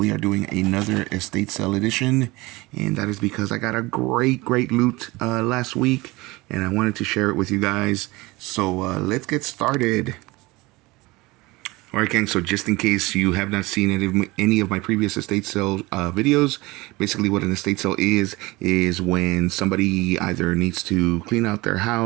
are doing another Estate Sale Edition, and that is because I got a great loot last week, and I wanted to share it with you guys. So let's get started. Alright gang, so just in case you have not seen any of my previous estate sale videos, basically what an estate sale is when somebody either needs to clean out their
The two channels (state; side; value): quieter; left; 22.0 dB